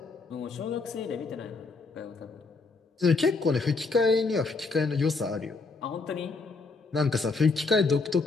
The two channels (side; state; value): right; quieter; 3.9 dB